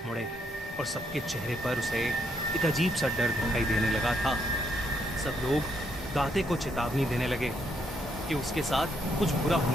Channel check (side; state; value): both; normal; correlation 0.75